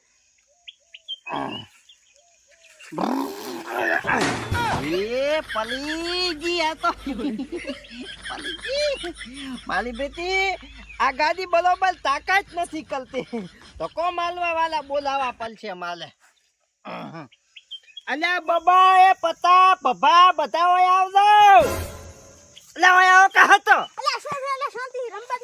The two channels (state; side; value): identical; both; correlation 1.00